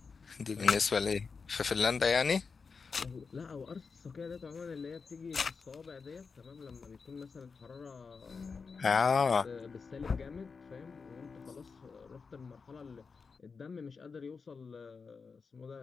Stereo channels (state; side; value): quieter; right; 5.1 dB